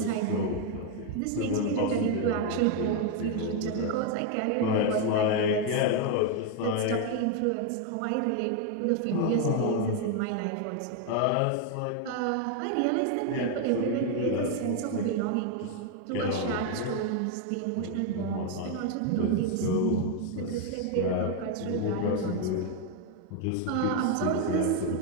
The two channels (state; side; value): different; both; correlation 0.01